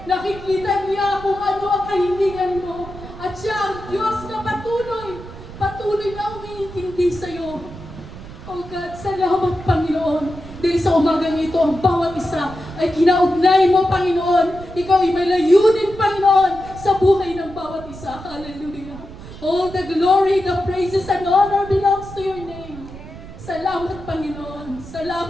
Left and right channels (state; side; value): noise; right; rumble, 15 dB below the sound